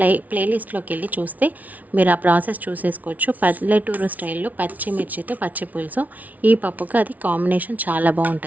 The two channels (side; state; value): left; late; 0.074 ms